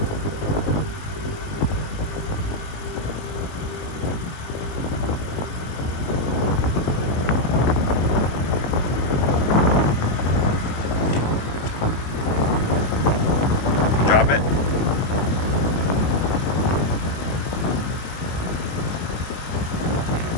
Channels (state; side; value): late; right; 19 ms